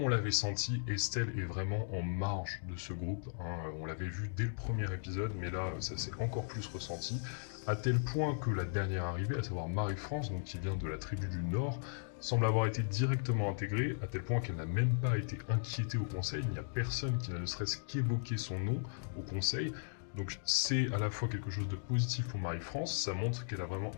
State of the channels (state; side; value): silent; right; digital silence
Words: l'avait senti, Estelle est vraiment en marge de ce groupe, hein. On l'avait vu dès le premier épisode, mais là, ça s'est encore plus ressenti, à tel point que la dernière arrivée, à savoir Marie-France, donc qui vient de la tribu du Nord, semble avoir été directement intégrée, à tel point qu'elle n'a même pas été inquiétée au conseil. Il n'y a personne qui n'a ne serait-ce qu'évoqué son nom au conseil. Donc c'est à la fois quelque chose de positif pour Marie-France, ça montre qu'elle a vraiment